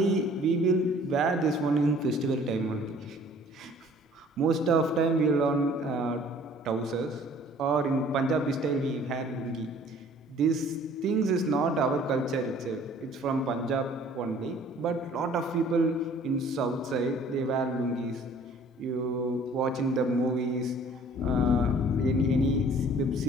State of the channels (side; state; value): both; normal; correlation 0.53